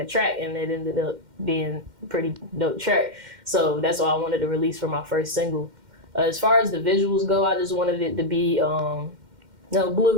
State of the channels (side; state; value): left; late; 2.1 ms